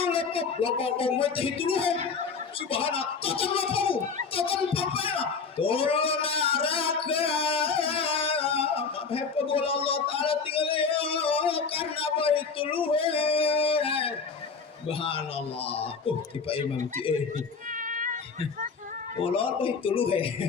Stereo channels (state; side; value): quieter; right; 5.2 dB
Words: lepabok mau itu luhe. Subhanallah, totan lepabok, totan papaya, tolong naraka. Hepa bola Allah Taala tinggal ya karena itu luhe. Subhanallah. Tipe Imam ti Ulol itu luhe.